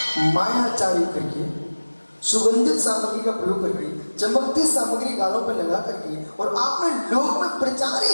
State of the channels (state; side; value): inverted; both; correlation -1.00